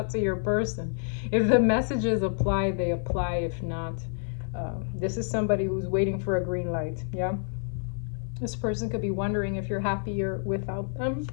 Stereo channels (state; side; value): silent; right; 59 dB below the other